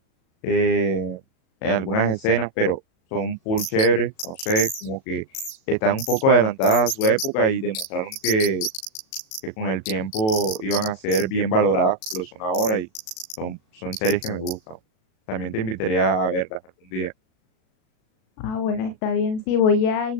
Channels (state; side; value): late; right; 37 ms